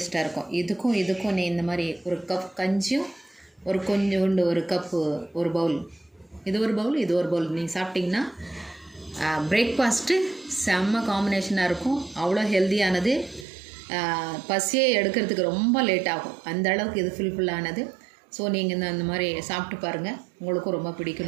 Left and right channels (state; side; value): drops out; left; at 13.5 s